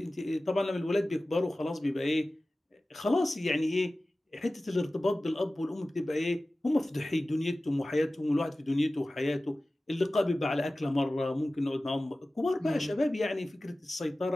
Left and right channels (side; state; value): both; normal; correlation 0.96